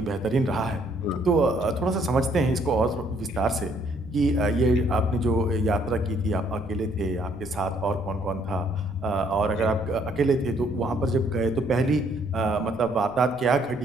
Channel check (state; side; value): noise; right; rumble, 23 dB below the sound